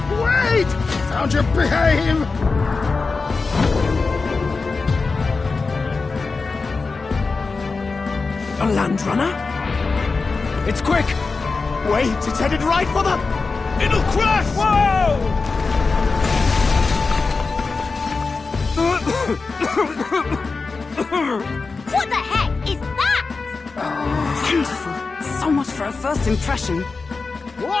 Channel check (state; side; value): quieter; right; 4.2 dB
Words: Wait! Found your behave! A land runner? It's quick! Wait, it's headed right for the... It'll crash! Whoa! What the heck is that? Wonderful. So much for a first impression.